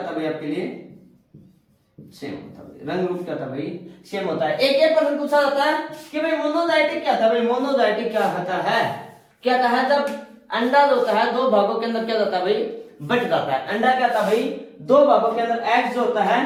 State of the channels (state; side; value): identical; both; correlation 1.00